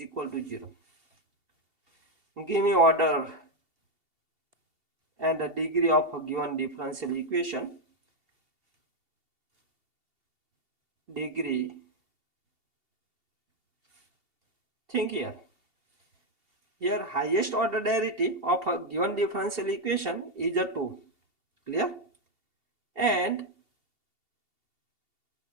to 0. Give me order and the degree of a given differential equation. Degree. Think here. Here highest order derivative of a given differential equation is a 2. Clear? And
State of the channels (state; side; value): late; left; 2.7 ms